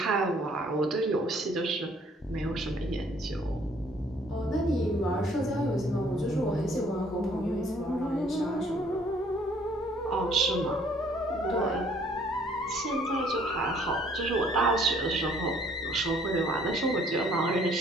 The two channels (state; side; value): normal; both; correlation 0.61